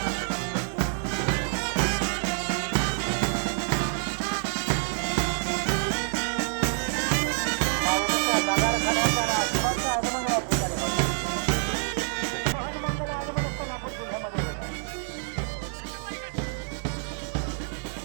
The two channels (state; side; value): silent; left; 60 dB below the other